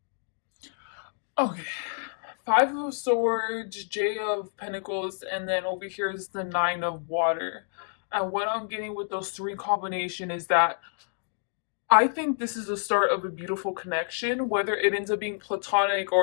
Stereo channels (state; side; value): silent; right; digital silence